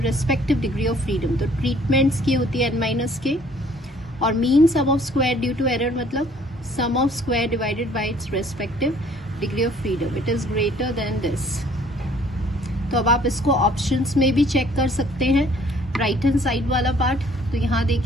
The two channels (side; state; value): both; normal; correlation 0.58